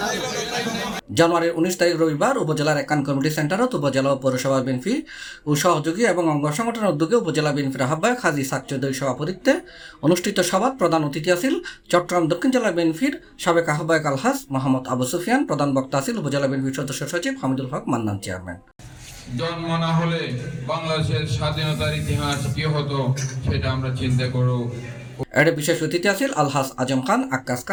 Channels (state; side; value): identical; both; correlation 1.00